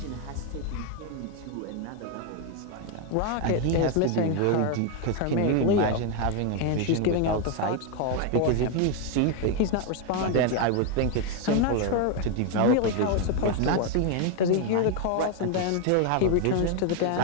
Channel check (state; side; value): different; both; correlation 0.01